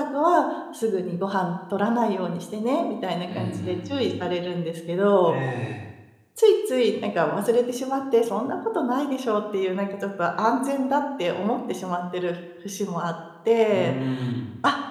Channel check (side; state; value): both; identical; correlation 1.00